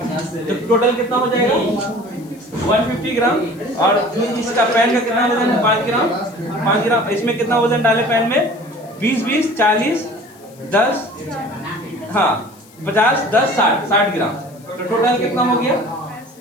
तो टोटल कितना हो जाएगा? 150 ग्राम। और इसका पेन का कितना वजन है? 5 ग्राम, 5 ग्राम। इसमें कितना वजन डाले पेन में? 20 20 40 10, हाँ 50 10 60 ग्राम। तो टोटल कितना हो गया?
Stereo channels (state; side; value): noise; left; hiss, 26 dB below the sound